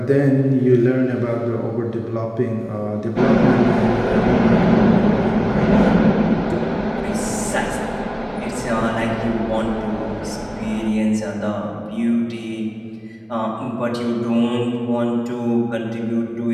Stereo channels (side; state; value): both; identical; correlation 1.00